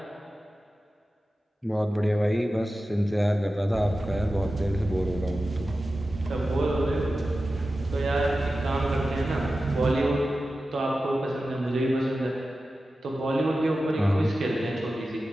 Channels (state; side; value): normal; both; correlation 0.94